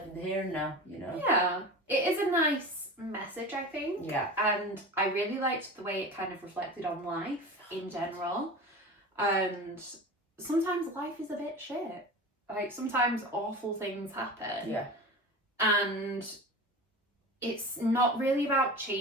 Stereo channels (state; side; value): normal; both; correlation 0.32